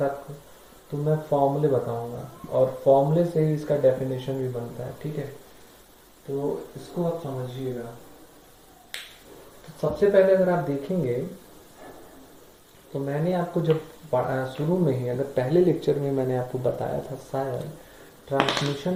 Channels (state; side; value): identical; both; correlation 1.00